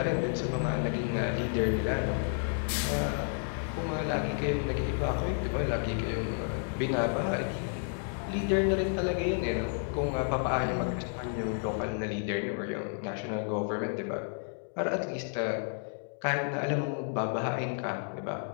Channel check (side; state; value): right; silent; 57 dB below the other